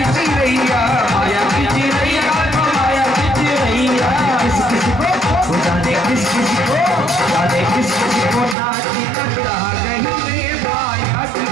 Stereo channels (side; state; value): left; drops out; at 8.6 s